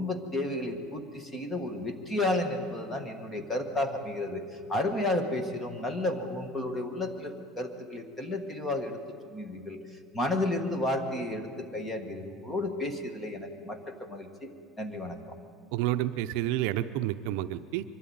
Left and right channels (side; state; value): both; normal; correlation 0.39